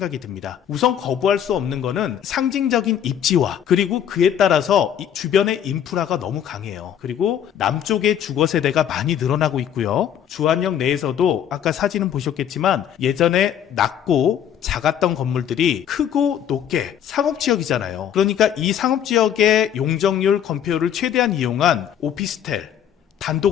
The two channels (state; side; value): quieter; right; 9.5 dB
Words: 듭니다. 우선 거부할 수 없는 거는 상징적인 입지와, 그리고 그에 따라서 이 주변의 인프라가 너무 강해요. 그리고 남쪽의 주거 세대가 많이 늘어나고 있고요. 주안역 내에서도 아까 사진은 보셨겠지만 예전에 낮고 작았던 건물들이 크고 높게 상업지역이잖아요. 그러니까 이 상업지역의 용적률 건폐율을 최대한 이용한 오피스텔,